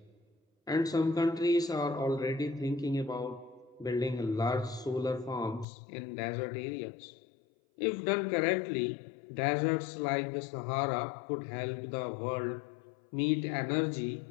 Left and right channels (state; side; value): drops out; right; at 5.7 s